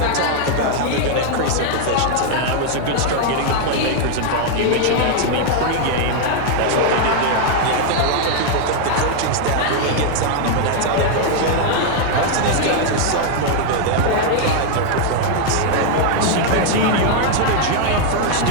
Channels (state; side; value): different; both; correlation 0.00